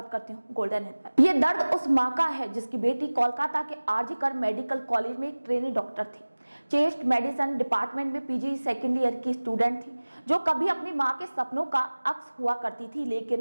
करती हूँ गोल्डन हिल पर। ये दर्द उस माँ का है जिसकी बेटी कोलकाता के आरजी कर मेडिकल कॉलेज में एक ट्रेनी डॉक्टर थी। चेस्ट मेडिसिन डिपार्टमेंट में पीजी सेकेंड ईयर की स्टूडेंट थी, जो कभी अपनी माँ के सपनों का अक्स हुआ करती थी,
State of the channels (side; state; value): both; inverted; correlation -1.00